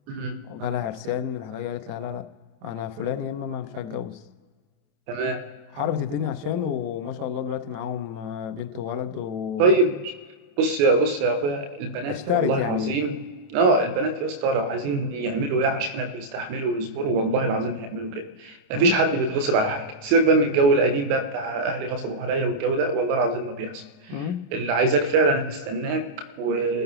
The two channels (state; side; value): late; left; 28 ms